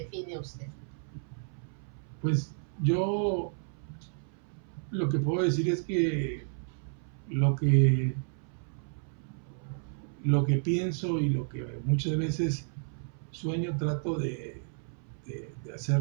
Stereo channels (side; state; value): left; silent; 57 dB below the other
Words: usted? Pues yo lo que puedo decir es que lo que pienso y lo que muchas veces sueño, trato de